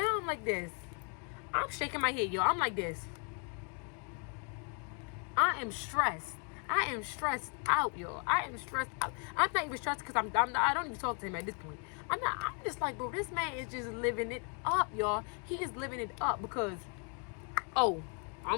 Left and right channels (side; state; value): right; quieter; 39.3 dB